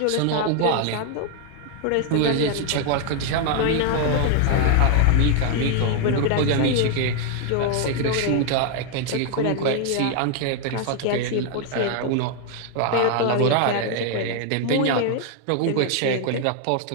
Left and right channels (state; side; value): different; both; correlation 0.00